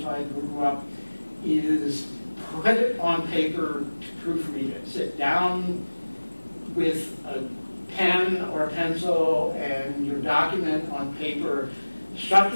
I grew up, is put it on paper to proofread it. Sit down with a pen or a pencil and your document on paper. shut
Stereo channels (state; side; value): inverted; both; correlation -1.00